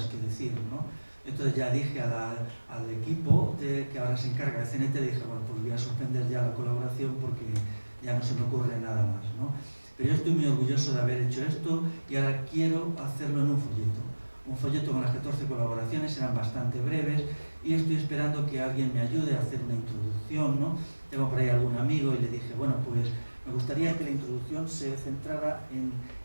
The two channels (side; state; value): both; inverted; correlation -1.00